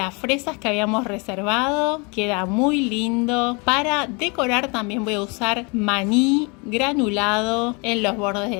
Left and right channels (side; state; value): right; quieter; 30.6 dB